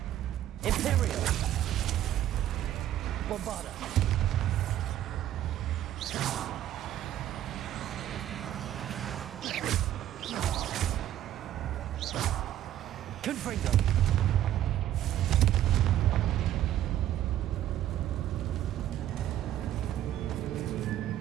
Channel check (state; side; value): quieter; left; 12.2 dB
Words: Imperial. Bombarda. Confringo.